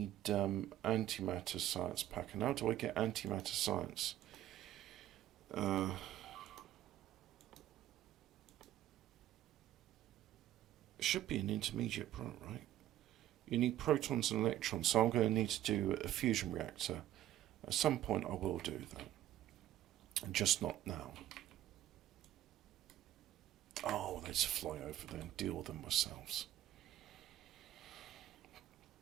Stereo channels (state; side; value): quieter; left; 13.1 dB